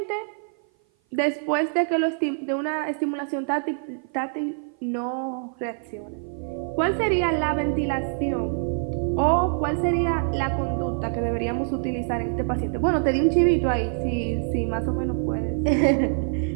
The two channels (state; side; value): silent; left; 56 dB below the other